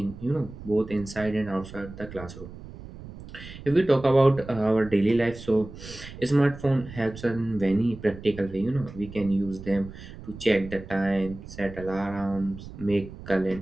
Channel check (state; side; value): noise; right; rumble, 14 dB below the sound